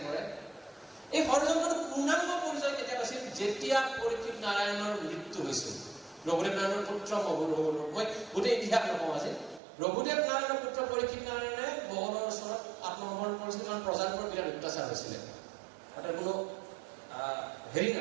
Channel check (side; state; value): left; drops out; at 9.6 s